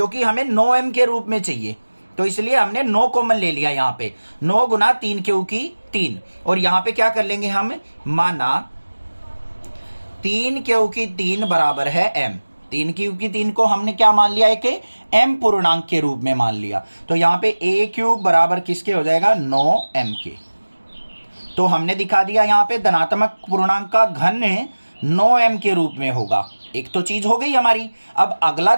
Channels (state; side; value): inverted; both; correlation -1.00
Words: हमें 9m के रूप में चाहिए, तो इसलिए हमने 9 कॉमन ले लिया यहां पे। 9 गुना 3 क्यू की 3, और यहां पे क्या कर लेंगे हम, माना 3 क्यू की 3 बराबर है m। 3 क्यू की 3 को हमने क्या मान लिया, एक m पूर्णांक के रूप में मान लिया, तो यहां पे a क्यूब बराबर किसके हो जाएगा, 9m के। तो हमने दिखा दिया यहां पे धनात्मक पूर्णांक का घन 9m के रूप में होगा। एक तो चीज हो गई हमारी। अब अगला